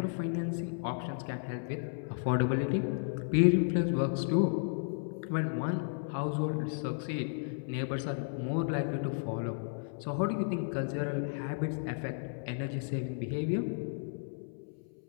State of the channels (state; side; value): silent; right; 55 dB below the other